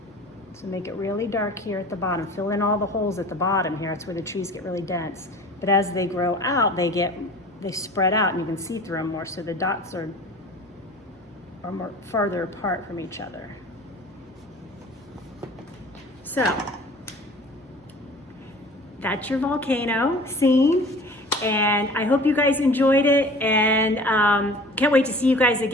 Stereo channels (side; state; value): both; normal; correlation 0.43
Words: So make it really dark here at the bottom. Fill in all the holes at the bottom here. That's where the trees get really dense. But as they grow out, they spread out, and you can see through them more. So the dots are more farther apart from each other. So that's your volcano scene. And I hope you guys enjoyed it, and can't wait to see you guys